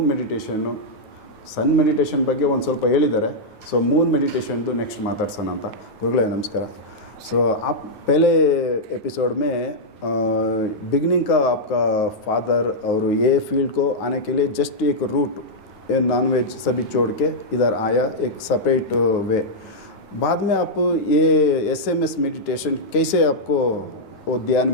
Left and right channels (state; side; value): late; right; 9.3 ms